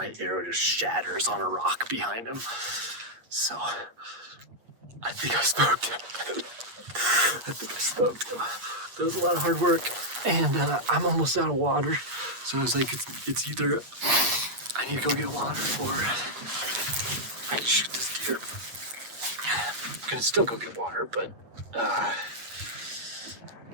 arrow just shatters on a rock behind him. So I think I smoked him. That was a lot of hard work, and I'm almost out of water. So I was like, it's either I need to go get water or I can shoot this deer. I'm gonna still go get water, but I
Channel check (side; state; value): left; late; 8.4 ms